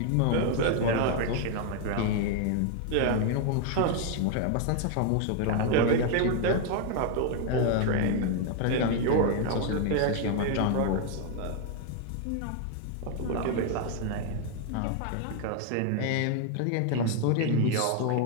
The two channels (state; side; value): different; both; correlation 0.00